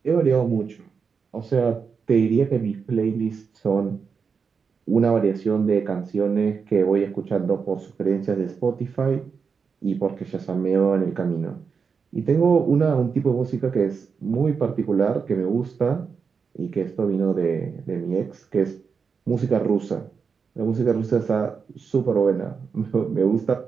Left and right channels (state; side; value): quieter; left; 5.7 dB